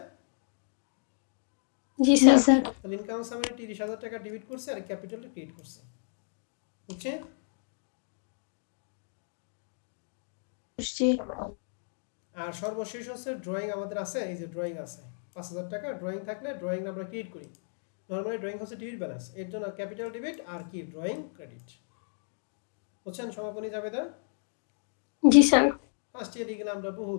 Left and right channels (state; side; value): silent; right; digital silence